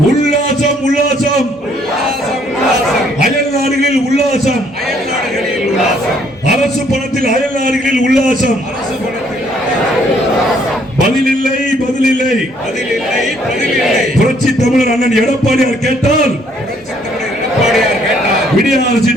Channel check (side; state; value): both; normal; correlation 0.65